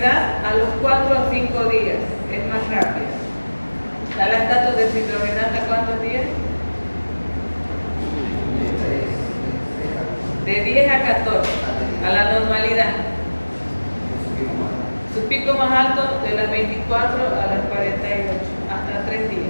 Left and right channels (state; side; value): inverted; both; correlation -1.00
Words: a los 4 a 5 días, es más rápida. La lactato deshidrogenasa, ¿cuántos días? De 10 a 14, a la normalidad. Su pico más alto de las 24 a las 48, hasta 3